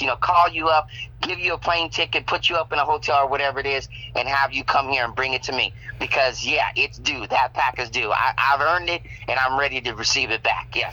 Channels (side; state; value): both; identical; correlation 1.00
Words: call you up, give you a plane ticket, put you up in a hotel or whatever it is, and have you come here and bring it to me. Because yeah, it's due. That pack is due. I've earned it, and I'm ready to receive it back.